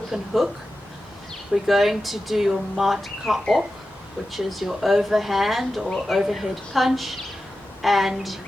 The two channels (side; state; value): both; normal; correlation 0.93